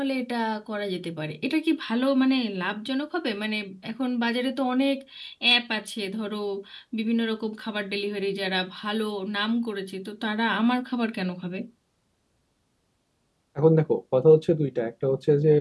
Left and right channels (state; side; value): identical; both; correlation 1.00